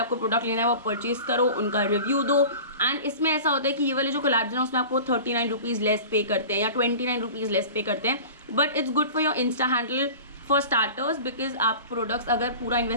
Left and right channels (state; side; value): inverted; both; correlation -0.37